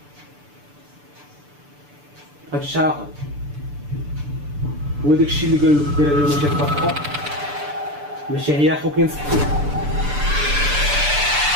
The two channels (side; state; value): left; late; 6.8 ms